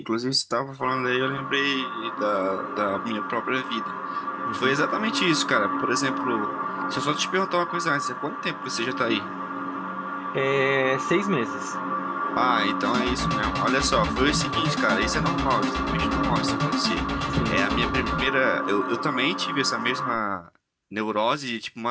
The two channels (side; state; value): both; identical; correlation 1.00